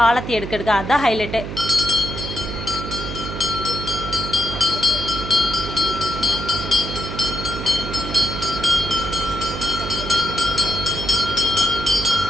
ஆலத்தி எடுக்க அதுதான் ஹைலைட்டு.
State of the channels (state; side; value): noise; right; hum, 7 dB below the sound